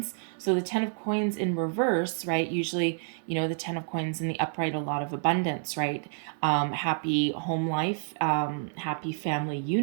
so the 10 of Coins in reverse, right, usually, you know, the 10 of Coins in the upright, a lot of abundance, right, happy home life, happy family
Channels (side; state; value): left; silent; 59 dB below the other